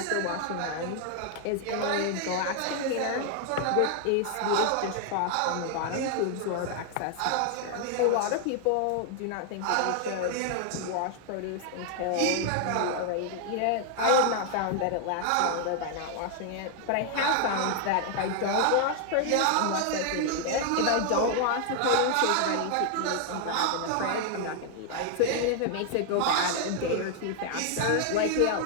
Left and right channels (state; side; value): different; both; correlation 0.00